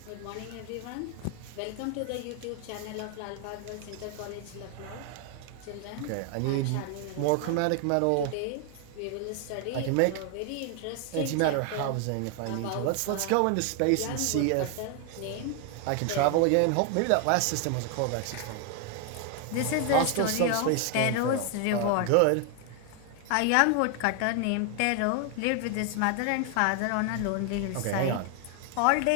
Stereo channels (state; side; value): different; both; correlation 0.00